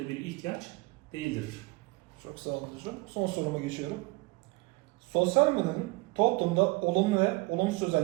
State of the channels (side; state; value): left; quieter; 23.8 dB